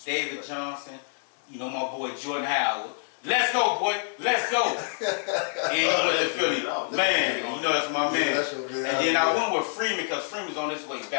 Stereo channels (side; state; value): right; silent; 60 dB below the other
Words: David Johnson, my boy Jordan Howard. Let's go, boy. Let's go. And he went to Philly. Man, that's my man. that's your man. And then I went with Freeman because Freeman's on his way